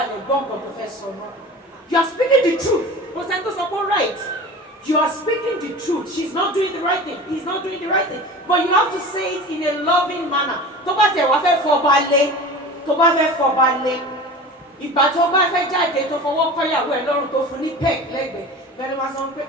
gbọ́ nǹkan tó fẹ́ sọ náà. You are speaking the truth. Kò sẹ́ni tó sọ pé right. You are speaking the truth. She's not doing the right thing. He's not doing the right thing. But you have to say it in a loving manner. Tó bá tẹ̀ wá fẹ́ fọba lé, tó bá fẹ́ fọba lé, ìgbà tó bá fẹ́ jáde tó fọwọ́ kọ́yàwó ẹ̀ lọ́rùn tó fún ní peg lẹ́gbẹ̀ẹ́, bẹ́ẹ̀ ni wọ́n sọ pé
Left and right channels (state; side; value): normal; both; correlation 0.35